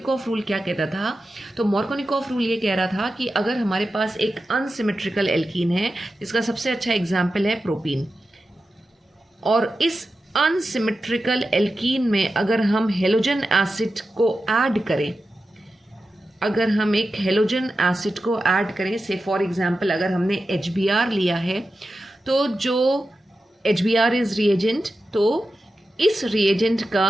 रूल क्या कहता था, तो मॉर्कोनिकॉफ रूल ये कह रहा था कि अगर हमारे पास एक अनसिमेट्रिकल एल्कीन है, जिसका सबसे अच्छा एग्जाम्पल है प्रोपीन, और इस अनसिमेट्रिकल एल्कीन में अगर हम हेलोजन एसिड को ऐड करें, अगर हम एक हेलोजन एसिड को ऐड करें, से फॉर एग्जांपल अगर हमने HBr लिया है, तो जो HBr इज रिएजेंट, तो इस रिएजेंट का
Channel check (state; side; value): normal; both; correlation 0.92